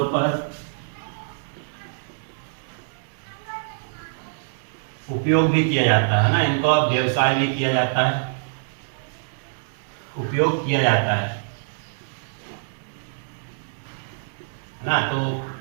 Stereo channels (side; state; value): left; silent; digital silence